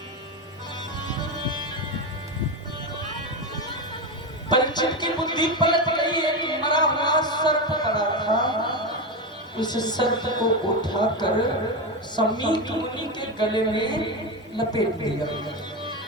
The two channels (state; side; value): normal; both; correlation 0.14